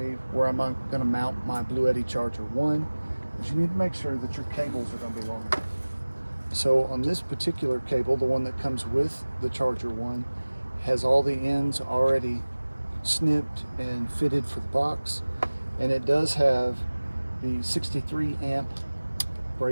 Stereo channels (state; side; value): inverted; both; correlation -1.00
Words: where am I going to mount my BLUETTI Charger 1, is you need to make sure that your cables are going to be long enough. So on this particular cable, the one that comes with the Charger 1, has all the ends already snipped and fitted for the box, and it does have the 63 amp